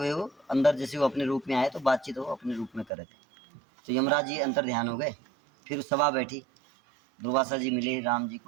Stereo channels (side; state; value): left; drops out; at 2.9 s